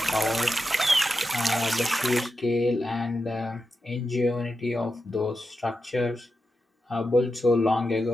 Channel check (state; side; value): normal; both; correlation 0.89